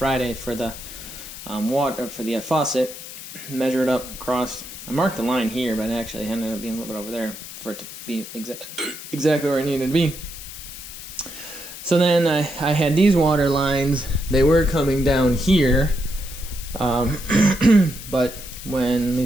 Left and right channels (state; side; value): noise; left; hiss, 12 dB below the sound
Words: for the water, for the faucet. Measure it up across. I marked the line here, but it actually ended up being a little bit over there for it to be exactly where it needed to be. So then I had these water lines. They were coming down here, but when